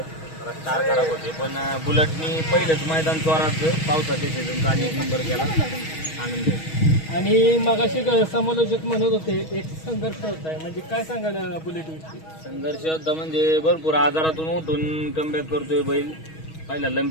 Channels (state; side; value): late; right; 6.3 ms